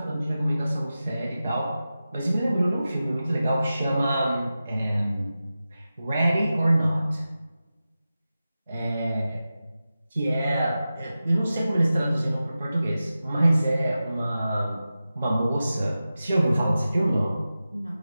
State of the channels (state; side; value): inverted; both; correlation -0.94